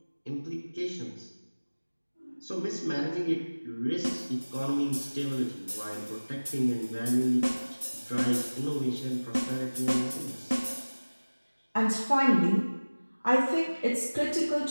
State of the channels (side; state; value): both; inverted; correlation -1.00